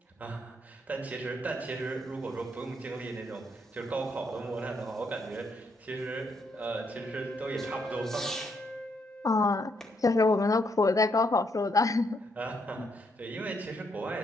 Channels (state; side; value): normal; both; correlation 0.75